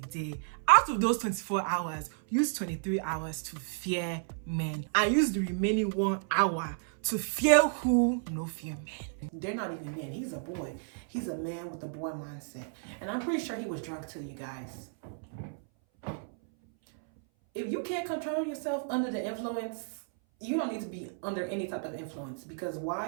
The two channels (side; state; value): left; silent; 56 dB below the other